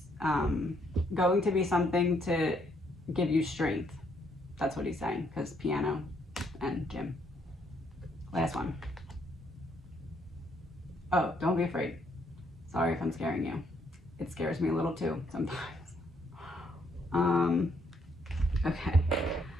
going to be something to give you strength. That's what he's saying, because piano and gym. Last one. Oh, don't be afraid. Sorry if I'm scaring you. It scares me a little too sometimes. Okay,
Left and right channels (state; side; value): normal; both; correlation 0.71